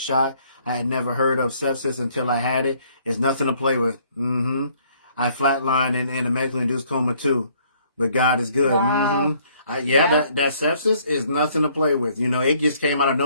I had never heard of sepsis until I had it. It's nothing to play with. I flatlined in a medically induced coma too, but God is good. Wow. That sepsis is nothing to play with. You know, it just came out of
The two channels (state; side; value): inverted; both; correlation -0.63